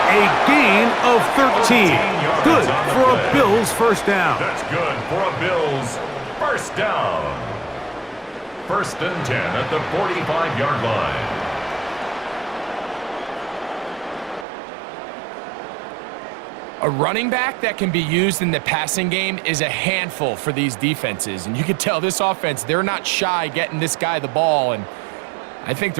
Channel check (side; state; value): left; drops out; at 14.5 s